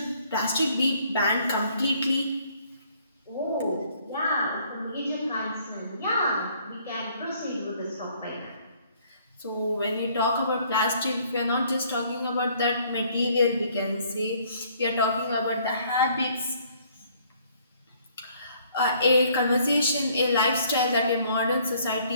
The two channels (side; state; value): both; inverted; correlation -0.62